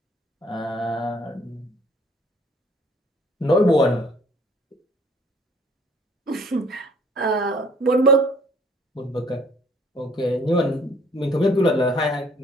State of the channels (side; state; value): both; normal; correlation 0.59